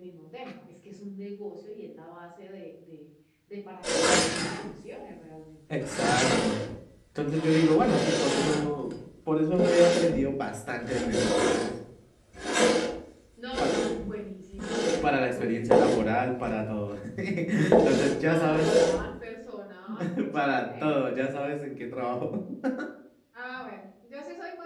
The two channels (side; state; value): both; identical; correlation 1.00